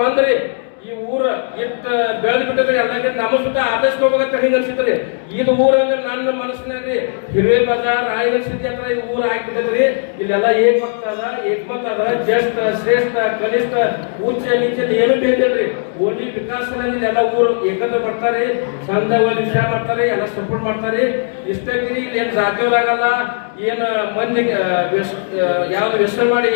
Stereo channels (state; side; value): silent; right; digital silence